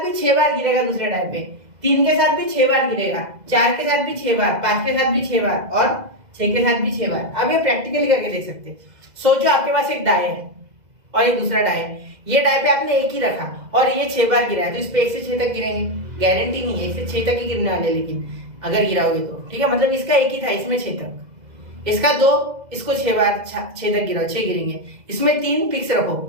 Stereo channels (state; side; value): late; left; 2.0 ms